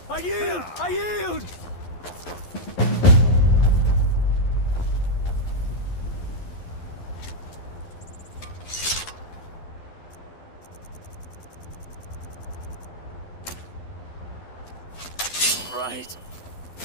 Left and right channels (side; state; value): right; late; 11 ms